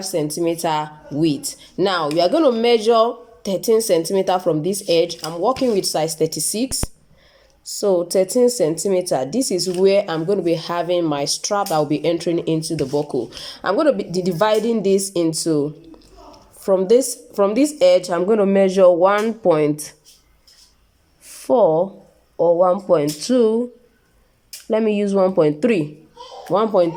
centimeter width. Now you are going to measure 13 centimeter from this edge. I'm working with size 36. So 13 centimeter, this is where I'm going to be having my strap that will be entering into the buckle. I'm going to be dividing this into, from this edge, I'm going to measure 1.4 or 1.2. Let me use 1.3,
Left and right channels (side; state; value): both; identical; correlation 1.00